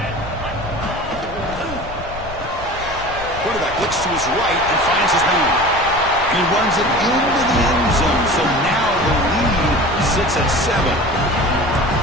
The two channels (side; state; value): left; noise; rumble, 13 dB below the sound